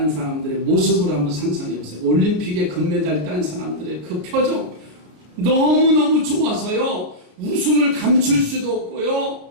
사람들의 모습을 한번 상상해 보세요. 올림픽에 금메달 딴 사람들의 그 표정 너무너무 좋아서요 웃음을 감출 수도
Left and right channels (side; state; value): left; late; 32 ms